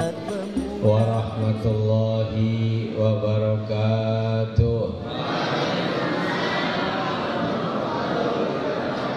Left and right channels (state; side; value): identical; both; correlation 1.00